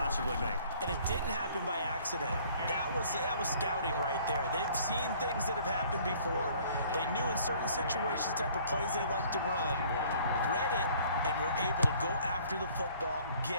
make. And it didn't happen by accident. That was scouting right there. They've seen things that have happened before. They knew in certain situations type of plays they like to run, read it, and were able to go after the football,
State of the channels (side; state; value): both; inverted; correlation -0.56